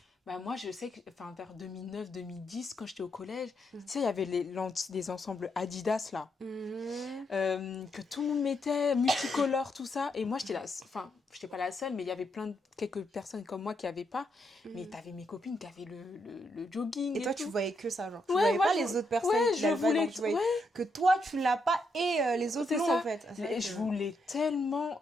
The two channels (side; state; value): both; normal; correlation 0.79